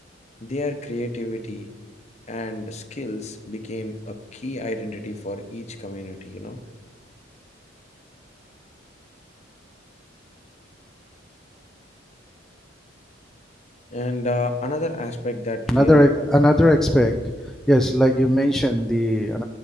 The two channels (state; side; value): normal; both; correlation 0.83